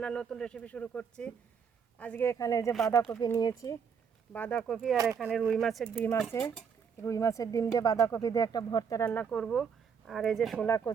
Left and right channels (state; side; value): quieter; left; 6.6 dB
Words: নতুন রেসিপি শুরু করছি। আজকে এখানে যে বাঁধাকপি নিয়েছি, বাঁধাকপি আর এখানে রুই মাছের ডিম আছে। রুই মাছের ডিম দিয়ে বাঁধাকপি দিয়ে একটা ভর্তা রান্না করব। আর এই যে শোলা